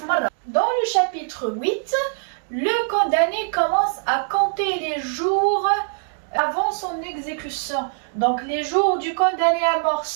مره. Dans le chapitre 8, le condamné commence à compter les jours avant son exécution. Donc les jours du condamné à mort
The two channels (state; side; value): silent; left; digital silence